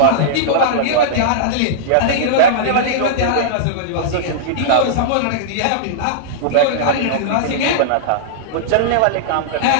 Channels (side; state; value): both; different; correlation -0.02